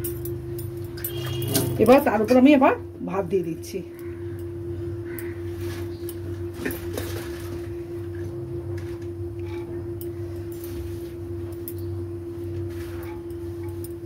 এবার তার উপর আমি এবার ভাত দিয়ে দিচ্ছি।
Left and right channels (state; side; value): identical; both; correlation 1.00